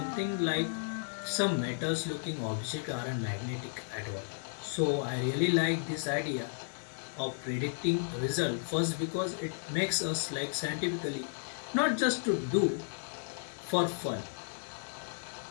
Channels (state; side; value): silent; right; 55 dB below the other